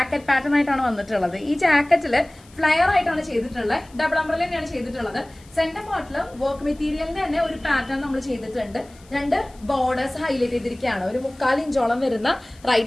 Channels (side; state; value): left; noise; hiss, 27 dB below the sound